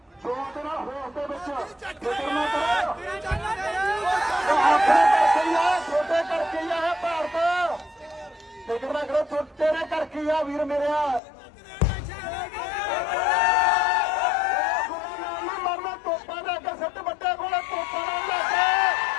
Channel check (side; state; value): right; drops out; at 11.2 s